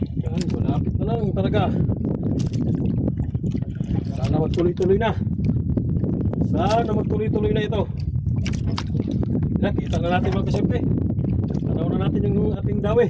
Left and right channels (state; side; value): identical; both; correlation 1.00